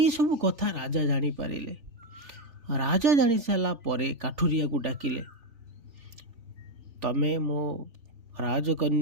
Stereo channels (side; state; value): left; late; 3.5 ms